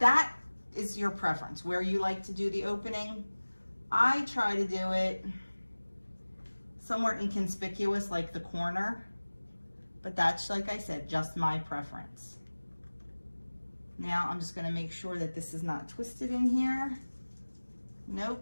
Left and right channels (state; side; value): inverted; both; correlation -1.00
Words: is your preference, where you like to do the opening. I try to do it somewhere inconspicuous, like the corner, but that's, like I said, just my preference. Now I'm just gonna make sure that this is not twisted in here.